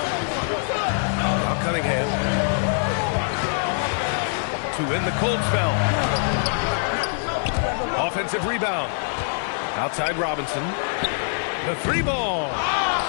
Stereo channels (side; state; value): right; silent; digital silence